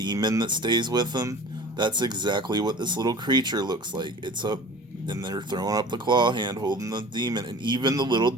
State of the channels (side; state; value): both; normal; correlation 0.42